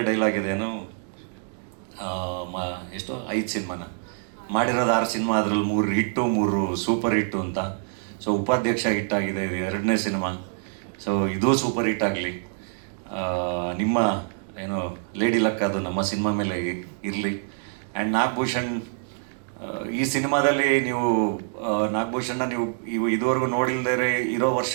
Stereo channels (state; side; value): silent; left; 61 dB below the other